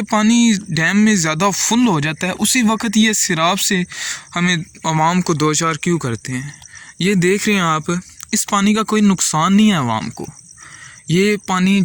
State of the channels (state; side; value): identical; both; correlation 1.00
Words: पानी डैम में ज़्यादा फुल हो जाता है उसी वक्त ये सैलाब से हमें आवाम को दो चार क्यों करते हैं। ये देख रहे हैं आप, इस पानी का कोई नुकसान नहीं है आवाम को, ये पानी